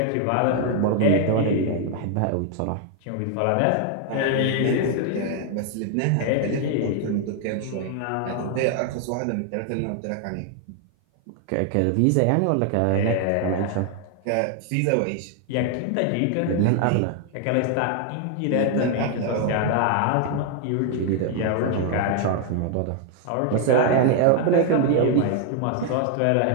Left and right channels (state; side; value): different; both; correlation 0.00